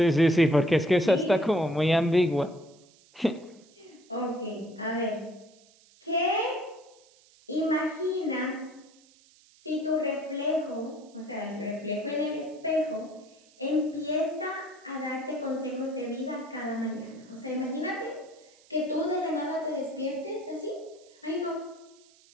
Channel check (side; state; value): right; noise; hiss, 28 dB below the sound